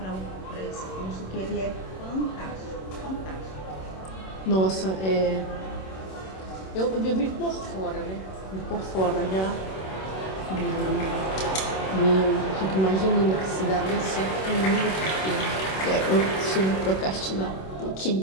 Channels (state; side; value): late; right; 26 ms